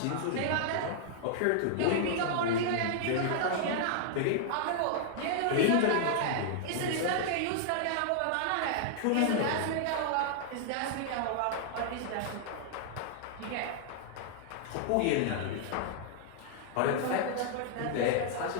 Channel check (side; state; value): both; different; correlation -0.01